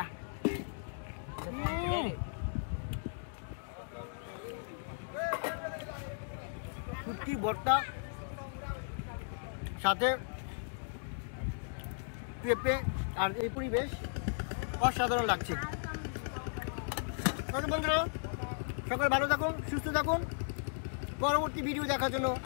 শুটকি ভর্তা সাথে পেঁপে আর এই পরিবেশ অসাধারণ লাগছে। বন্ধুরা সকাল ভালো থাকুন, সুস্থ থাকুন। পরবর্তী ভিডিও দেখার জন্য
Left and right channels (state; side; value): silent; right; digital silence